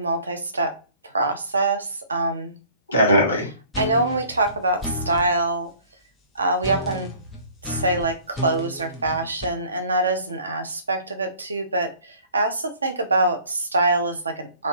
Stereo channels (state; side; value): inverted; both; correlation -0.53